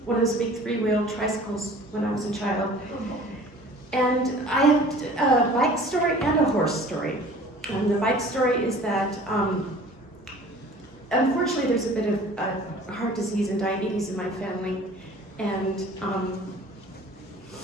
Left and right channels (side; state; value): both; normal; correlation 0.47